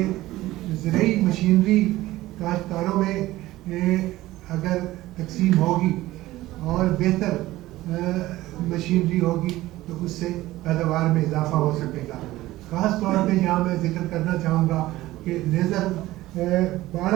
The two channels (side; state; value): left; quieter; 16.8 dB